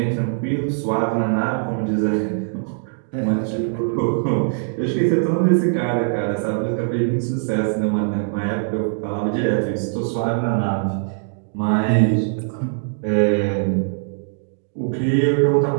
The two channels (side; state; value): left; silent; digital silence